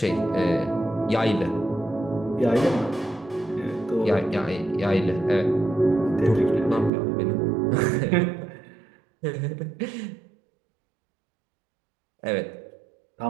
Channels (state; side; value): drops out; left; at 6.9 s